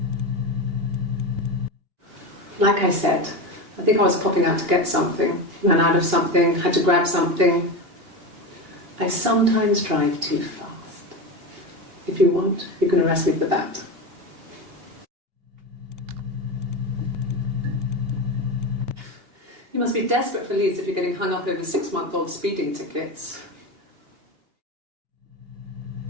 Like I said, I think I was popping out to get something, ran out of something, had to grab something. I sometimes drive too fast. If you want, you can arrest me for that. You must be desperate for leads if you're getting hung up over 6-month-old speeding tickets.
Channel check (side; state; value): left; late; 2.8 ms